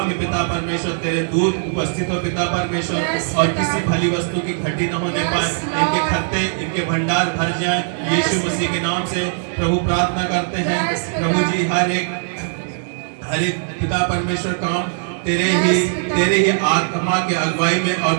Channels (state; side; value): silent; left; digital silence